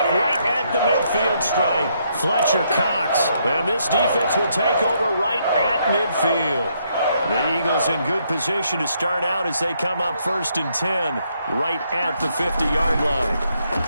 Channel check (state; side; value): inverted; both; correlation -0.74